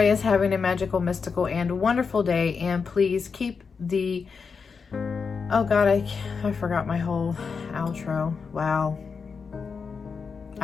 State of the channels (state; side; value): quieter; right; 5.4 dB